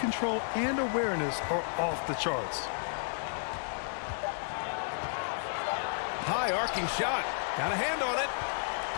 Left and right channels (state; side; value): silent; right; 56 dB below the other